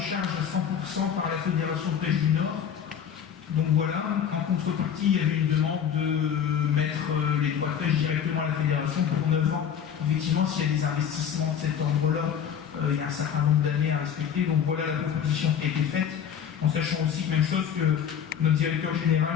à 100% par la Fédération de pêche du Nord. Donc voilà, en contrepartie, il y avait une demande de mettre les droits de pêche directement à la fédération pour 9 ans. Effectivement, s'il y a des investissements de cet ordre-là, il y a un certain nombre d'années à respecter. Donc voilà la proposition qui a été faite, en sachant aussi, même chose, que notre directeur général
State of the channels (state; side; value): quieter; right; 8.4 dB